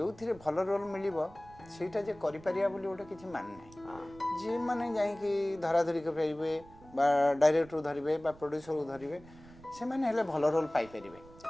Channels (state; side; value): noise; right; rumble, 22 dB below the sound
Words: ଭଲ ରୋଲ୍ ମିଳିବ ସେଇଟା ଯେ କରିପାରିବା ବୋଲି ଗୋଟେ କିଛି ମାନେ ନାହିଁ। ଯିଏ ମାନେ ଯାଇକି ଧରାଧରି କରିପାରିବେ ବା ଡାଇରେକ୍ଟର ଧରିବେ ବା ପ୍ରଡ୍ୟୁସରକୁ ଧରିବେ ସେମାନେ ହେଲେ ଭଲ ରୋଲ୍ ପାଇପାରିବେ।